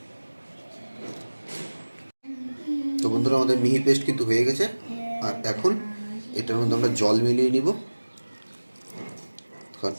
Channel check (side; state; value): both; inverted; correlation -1.00